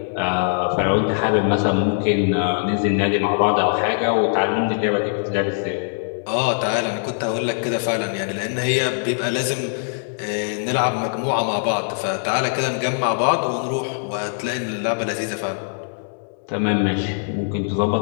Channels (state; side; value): silent; right; digital silence